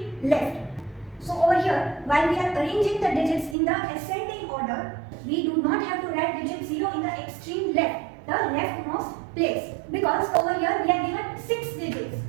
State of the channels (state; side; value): drops out; left; at 3.6 s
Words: left. So over here, while we are arranging the digits in the ascending order, we do not have to write digit 0 in the extreme left, the leftmost place, because over here we are given 6 digits